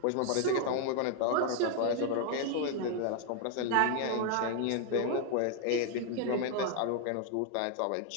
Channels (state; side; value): different; both; correlation 0.00